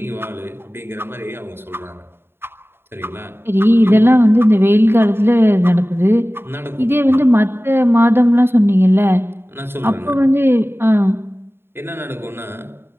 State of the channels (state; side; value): late; left; 0.11 ms